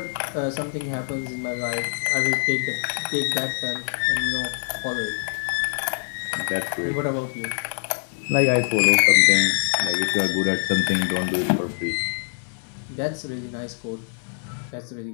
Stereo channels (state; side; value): silent; right; digital silence